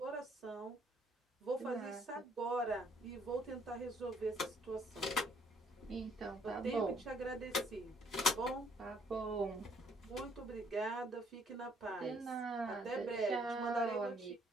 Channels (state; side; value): normal; both; correlation 0.65